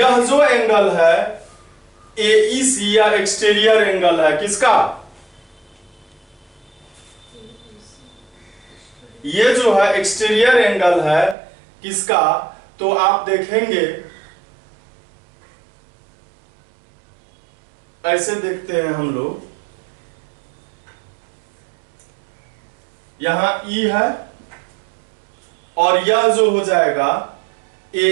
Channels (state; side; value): drops out; left; at 11.4 s